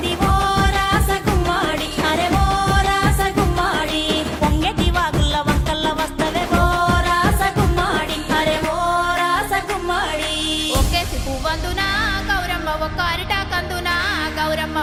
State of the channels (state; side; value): identical; both; correlation 1.00